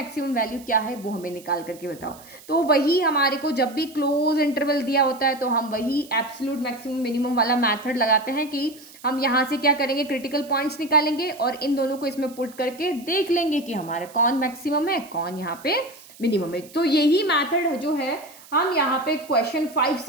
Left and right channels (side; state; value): right; noise; hiss, 21 dB below the sound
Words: वैल्यू क्या है वो हमें निकाल करके बताओ। तो वही हमारे को जब भी क्लोज इंटरवल दिया होता है तो हम वही एब्सोल्यूट मैक्सिमम मिनिमम वाला मेथड लगाते हैं कि हम यहाँ से क्या करेंगे, क्रिटिकल पॉइंट्स निकालेंगे और इन दोनों को इसमें पुट करके देख लेंगे कि हमारा कौन मैक्सिमम है कौन यहाँ पे मिनिमम है। तो यही मेथड जो है हम यहाँ पे क्वेश्चन 5